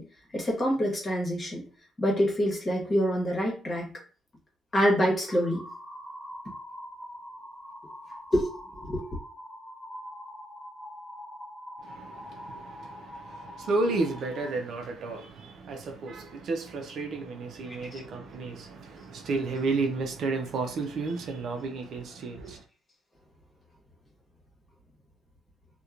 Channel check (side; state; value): both; normal; correlation 0.79